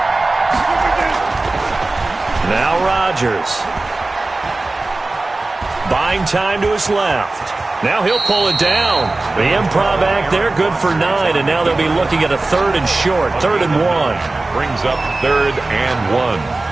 Now Rodgers. Buying time to his left. Now he'll pull it down. The improv act there, good for 9, and now they'll be looking at a 3rd and short, 3rd and 1. Brings up 3rd and 1.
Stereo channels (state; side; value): quieter; left; 3.1 dB